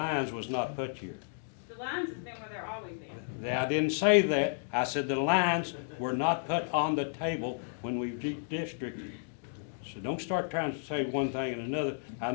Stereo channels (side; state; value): right; silent; digital silence